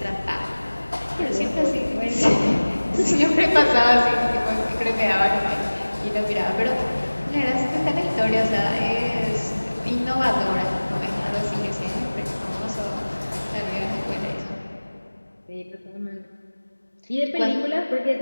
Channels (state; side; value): inverted; both; correlation -1.00